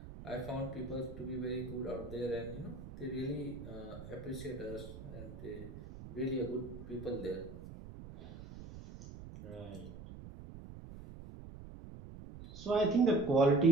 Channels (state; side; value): noise; right; rumble, 13 dB below the sound